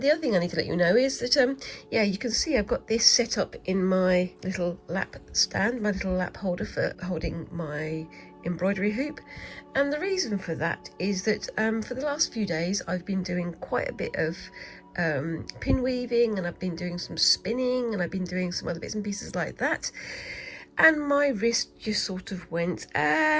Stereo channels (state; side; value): identical; both; correlation 1.00